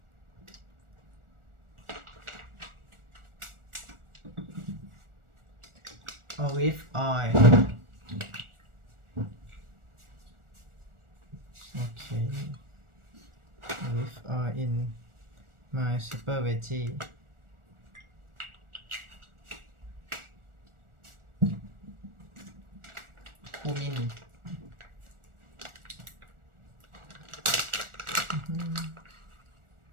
Olive oil. Okay. Olive oil in my super veggie. Cumin.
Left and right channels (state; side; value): late; left; 1.4 ms